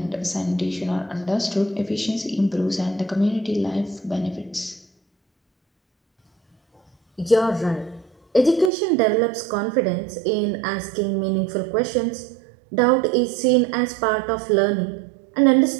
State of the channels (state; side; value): drops out; left; at 8.7 s